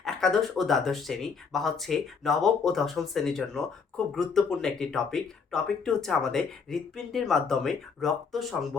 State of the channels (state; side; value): quieter; right; 5.5 dB